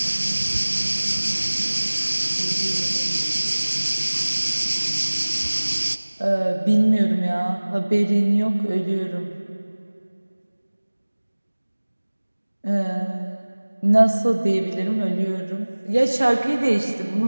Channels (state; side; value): inverted; both; correlation -1.00